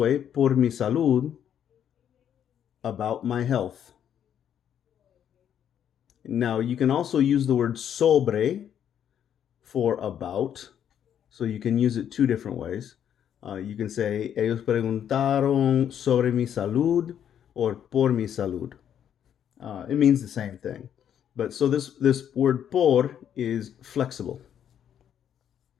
por mi salud, about my health. Now, you can also use the word sobre for about, so you can use it two different ways. You can say, ellos preguntaron sobre mi salud or por mi salud. It means the same thing. But so this word por is flexible.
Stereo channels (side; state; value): right; quieter; 9.3 dB